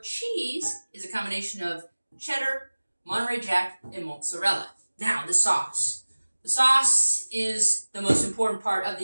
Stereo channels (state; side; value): inverted; both; correlation -1.00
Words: cheese is a combination of cheddar, Monterey Jack, and mozzarella. Now, the sauce. The sauce is the most important part of